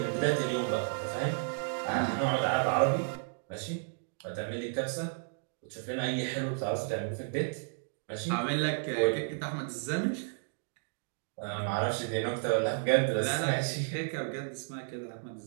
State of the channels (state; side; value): silent; left; digital silence